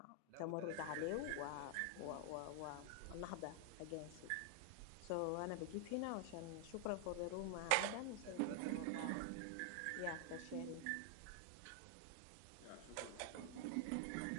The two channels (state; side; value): different; both; correlation 0.00